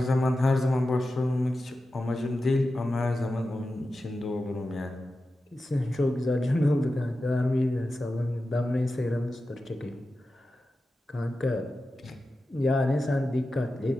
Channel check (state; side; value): normal; both; correlation 0.93